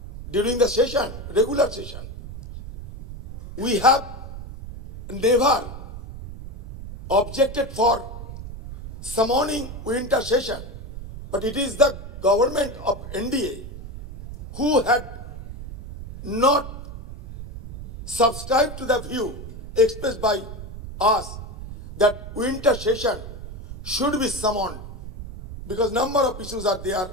during the session, regular session. We have never objected for summoning winter session, but it is the government of NDA who had not subscribed to the view expressed by us that winter session should be summoned because number of issues are there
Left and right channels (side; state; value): right; noise; rumble, 11 dB below the sound